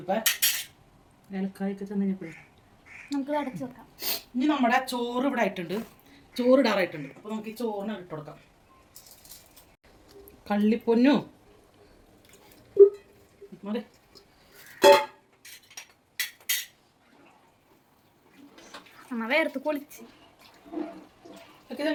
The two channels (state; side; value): identical; both; correlation 1.00